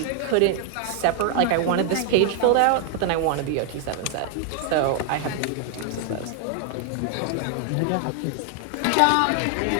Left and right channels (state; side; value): different; both; correlation 0.00